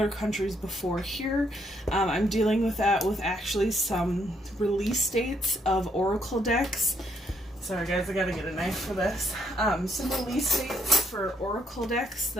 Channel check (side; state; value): both; normal; correlation 0.71